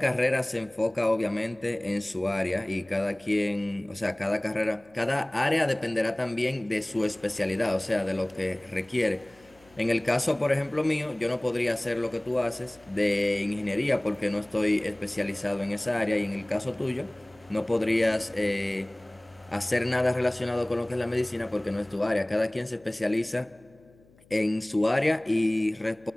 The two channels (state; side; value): noise; left; hum, 29 dB below the sound